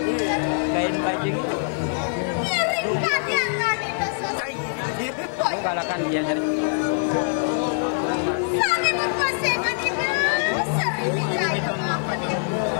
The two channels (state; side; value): silent; right; 62 dB below the other